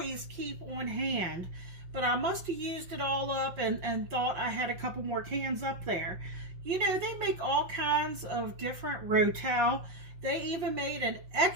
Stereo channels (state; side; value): late; left; 5.6 ms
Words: keep on hand. But I must have used it all up and thought I had a couple more cans up there. You know, they make all kinds of different Rotel. They even made an